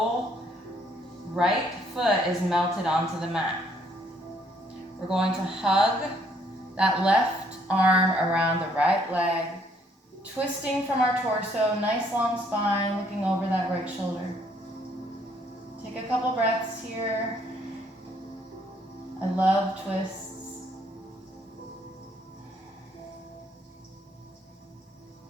right foot is melted onto the mat. We're going to hug that left arm around the right leg, twisting from our torso, nice long spine, looking over that right shoulder. Take a couple breaths here. I love twists.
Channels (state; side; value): normal; both; correlation 0.67